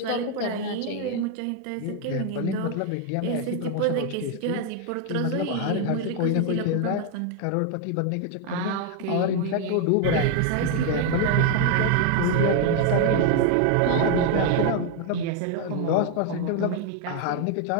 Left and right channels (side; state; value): both; different; correlation 0.01